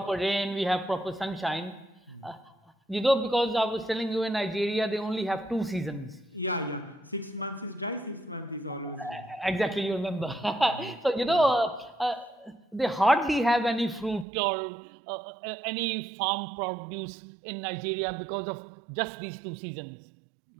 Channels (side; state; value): left; drops out; at 14.2 s